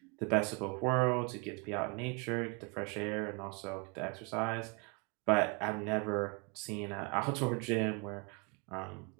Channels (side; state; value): left; quieter; 31.8 dB